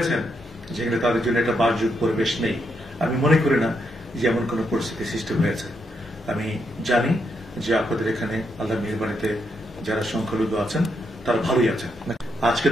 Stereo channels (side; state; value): both; normal; correlation 0.80